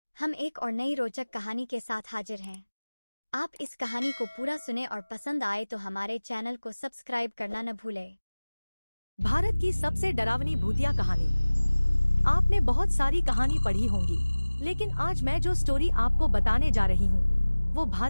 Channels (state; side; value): inverted; both; correlation -1.00